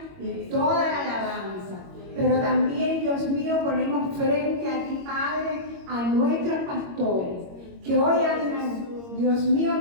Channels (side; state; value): left; late; 22 ms